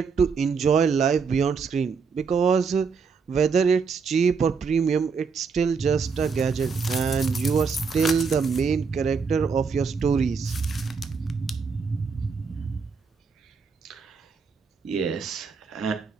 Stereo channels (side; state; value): left; quieter; 5.4 dB